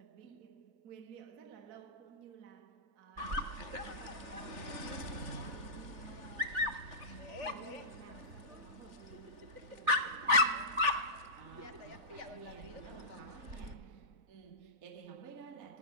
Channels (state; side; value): late; left; 4.0 ms